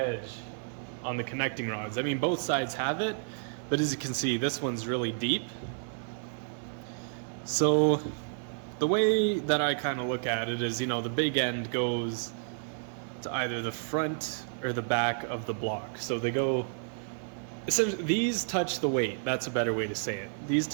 on the connecting rods. I mean, both sides have it, but as you can see, this one's really deep. So the way that I kind of look at it is, the big end goes to either the front or the back of the block. So they go, essentially, these touch the weight. That's a better way to say it. These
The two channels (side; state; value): left; silent; 57 dB below the other